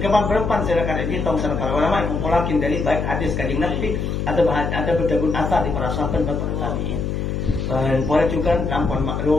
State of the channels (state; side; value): noise; left; hum, 2 dB below the sound